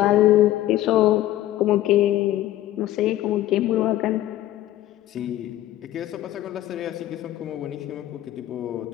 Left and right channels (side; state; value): right; quieter; 14.2 dB